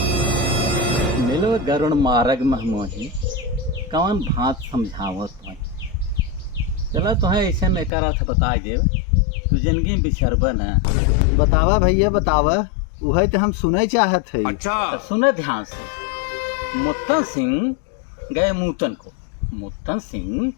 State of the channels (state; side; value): drops out; right; at 7.9 s